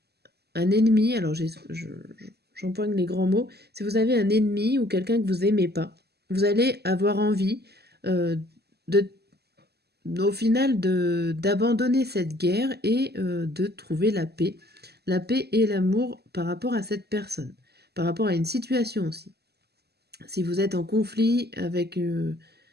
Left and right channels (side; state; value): left; late; 0.47 ms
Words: ennemi, alors j'empoigne les grands mots, si vous avez un ennemi ou quelqu'un que vous aimez pas, vous allez avoir envie euh, de, au final d'abandonner cette guerre et de trouver la paix et l'amour par rapport à cette personne, par rapport à une situation aussi. Si vous êtes en conflit avec une